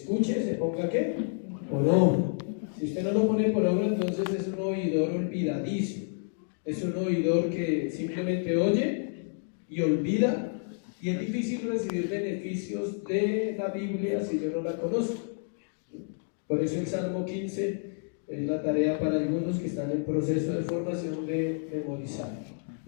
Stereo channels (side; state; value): right; silent; digital silence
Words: se ponga ¿qué? Por obra. Si usted no lo pone por obra, entonces es un oidor olvidadizo. Es un oidor que simplemente oye y olvida, y es difícil recibir beneficios de la Biblia si yo no la conozco. Por eso el Salmo 15 es la tarea para algunos que están en proceso de formación de memorizar.